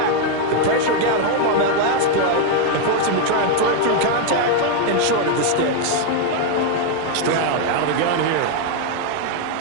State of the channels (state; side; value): different; both; correlation 0.01